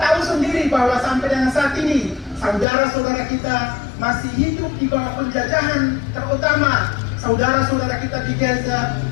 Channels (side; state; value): right; drops out; at 2.7 s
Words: sendiri bahwa sampai dengan saat ini saudara-saudara kita masih hidup di bawah penjajahan, terutama saudara-saudara kita di Gaza